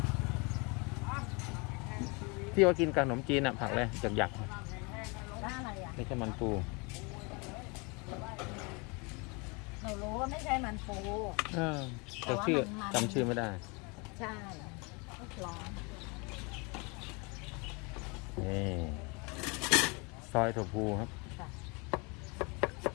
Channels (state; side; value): quieter; right; 30.0 dB